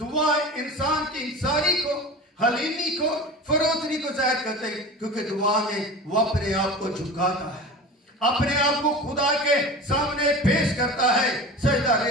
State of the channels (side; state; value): both; normal; correlation 0.33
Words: इंसान की इंसानी को, हलीमी को, फरोतनी को जाहिर करते हैं, क्योंकि दुआ में वो अपने आप को झुकाता है, अपने आप को खुदा के सामने पेश करता है, सजदा